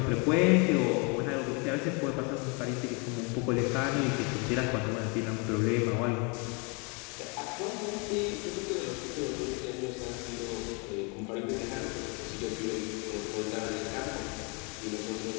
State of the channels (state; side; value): quieter; right; 32.8 dB